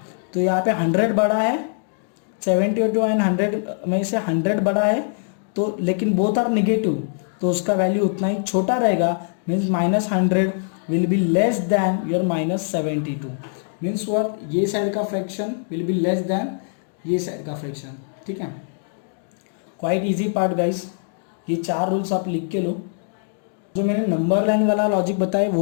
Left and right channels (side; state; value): right; silent; digital silence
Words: तो यहाँ पे 100 बड़ा है, 72 एंड 100 में से 100 बड़ा है तो, लेकिन बोथ आर नेगेटिव तो उसका वैल्यू उतना ही छोटा रहेगा. Means -100 will be less than your -72. Means what, ये साइड का fraction will be less than ये साइड का फ्रैक्शन. ठीक है, क्वाइट इजी पार्ट गाइस. ये 4 रूल्स आप लिख के लो. जो मैंने नंबर लाइन वाला लॉजिक बताया